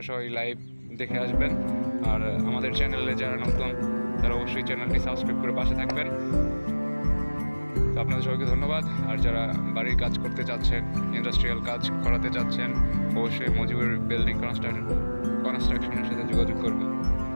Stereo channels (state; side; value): inverted; both; correlation -1.00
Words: সবাই লাইভ দেখে আসবেন। আর আমাদের চ্যানেলে যারা নতুন তারা অবশ্যই চ্যানেলটি সাবস্ক্রাইব করে পাশে থাকবেন। তো আপনাদের সবাইকে ধন্যবাদ। আর যারা বাড়ির কাজ করতে চাচ্ছেন, ইন্ডাস্ট্রিয়াল কাজ করাতে চাচ্ছেন, অবশ্যই মজিবুর বিল্ডিং কনস্ট্রাকশনের সাথে যোগাযোগ করবেন।